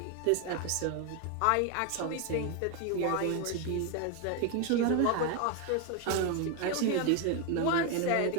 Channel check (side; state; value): both; different; correlation 0.01